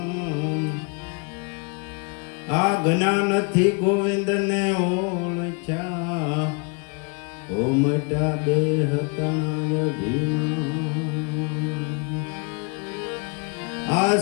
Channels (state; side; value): quieter; right; 33.8 dB